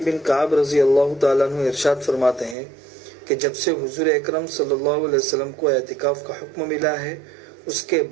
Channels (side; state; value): left; drops out; at 2.6 s